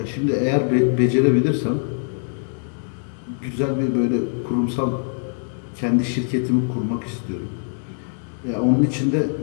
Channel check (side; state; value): right; silent; 64 dB below the other